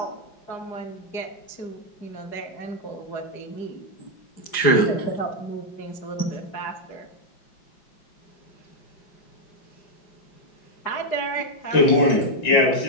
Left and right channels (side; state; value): right; late; 5.0 ms